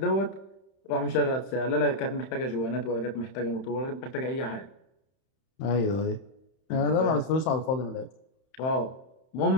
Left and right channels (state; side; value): late; right; 31 ms